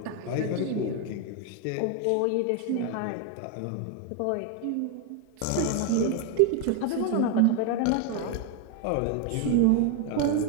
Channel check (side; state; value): both; different; correlation 0.01